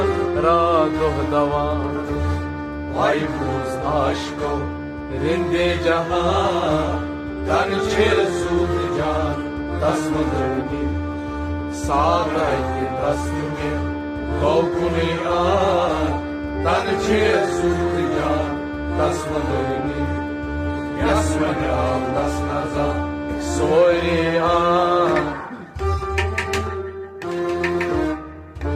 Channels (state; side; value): identical; both; correlation 1.00